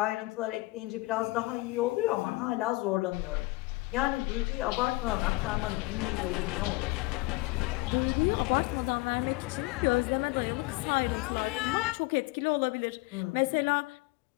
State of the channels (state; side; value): quieter; right; 22.8 dB